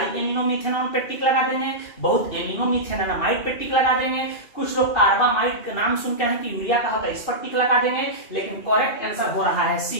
एमिनोमिथेनॉन पे टिक लगा देंगे, बहुत एमिनोमिथेनामाइड पे टिक लगा देंगे, कुछ लोग कार्बामाइड का नाम सुनते हैं कि यूरिया का होता है, इस पर टिक लगा देंगे, लेकिन करेक्ट आंसर हो रहा है सी।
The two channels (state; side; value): late; right; 2.6 ms